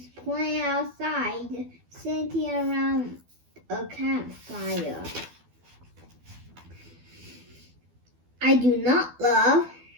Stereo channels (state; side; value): late; left; 12 ms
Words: playing outside, sitting around a campfire. I do not love